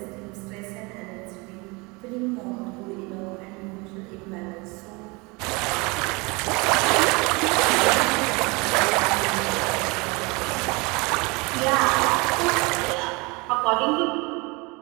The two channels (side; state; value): left; quieter; 26.9 dB